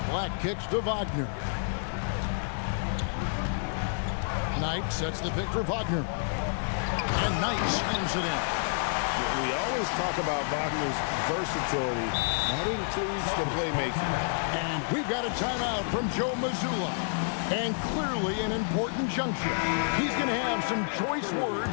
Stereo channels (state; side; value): silent; right; 58 dB below the other